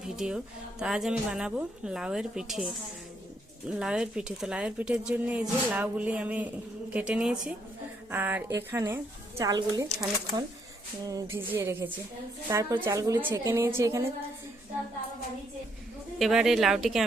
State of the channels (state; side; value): normal; both; correlation 0.73